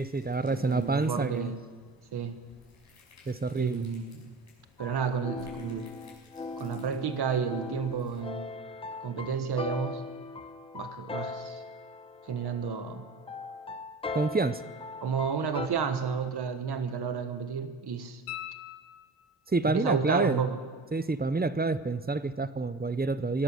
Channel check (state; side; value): quieter; left; 3.7 dB